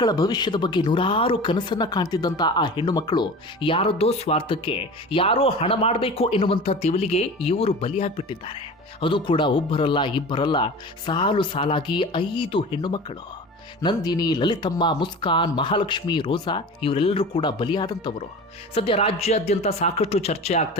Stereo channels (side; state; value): both; normal; correlation 0.35